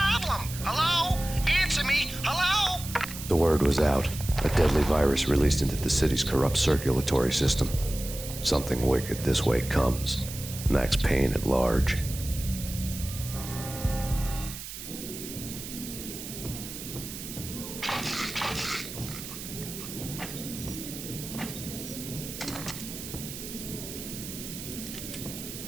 Hello? Answer me. Hello? The word was out. A deadly virus released into the city's corrupt circulatory system. Something wicked this way comes. Max Peyne at large.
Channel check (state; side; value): noise; right; hiss, 10 dB below the sound